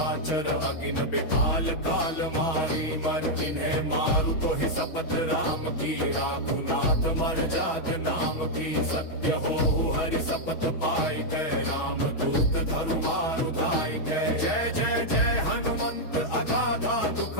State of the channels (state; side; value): late; right; 6.2 ms